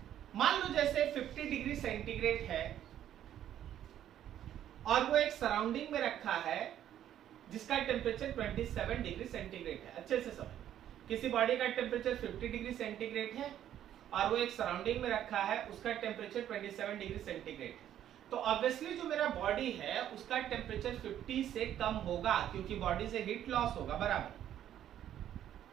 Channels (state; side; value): quieter; left; 11.0 dB